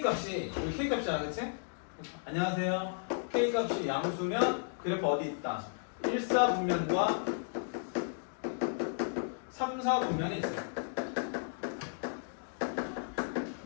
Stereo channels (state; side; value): silent; right; digital silence